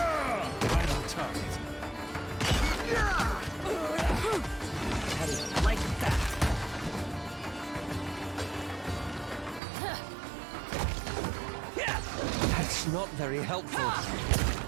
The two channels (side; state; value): left; drops out; at 9.6 s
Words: Right on target. How do you like that? That's not very helpful.